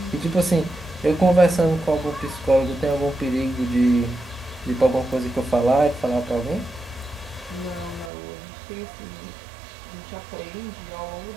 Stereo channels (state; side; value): drops out; left; at 8.1 s